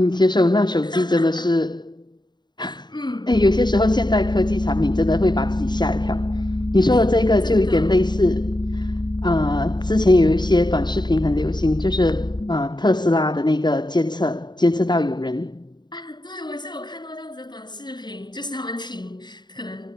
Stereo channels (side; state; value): right; late; 0.21 ms